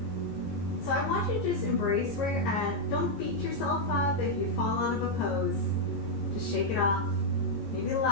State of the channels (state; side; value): late; right; 15 ms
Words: So I want you to just embrace where you're at. Don't beat yourself up if you fall out of a pose. Just shake it off. Maybe